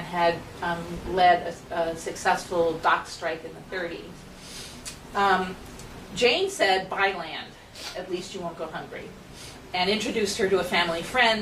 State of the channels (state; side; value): identical; both; correlation 1.00